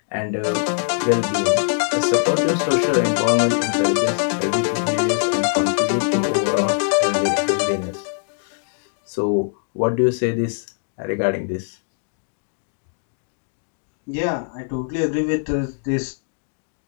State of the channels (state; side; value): silent; right; digital silence